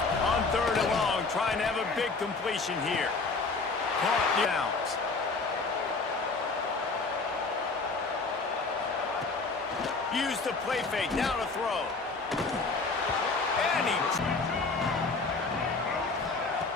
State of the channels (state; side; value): quieter; right; 3.9 dB